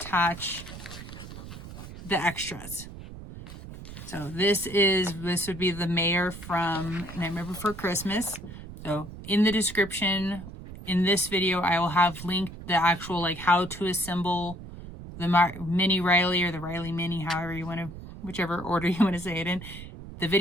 the extras. So this would be the mayor from Nightmare Before Christmas. So in the description in this video, I will have linked the actual like how to assemble the mini Riley or the Riley Mini, however you want to, whichever order you want to say it in. The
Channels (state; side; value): noise; right; rumble, 13 dB below the sound